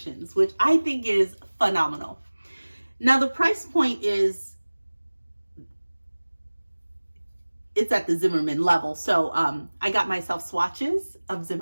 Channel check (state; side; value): inverted; both; correlation -1.00